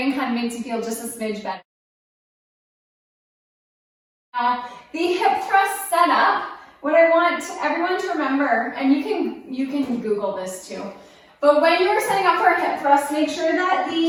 kind of makes you feel just a smidge better. Now, the hip thrust setup, what I want everyone to remember, and you can Google this too, but when you're setting up for a hip thrust, make sure that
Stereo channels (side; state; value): both; identical; correlation 1.00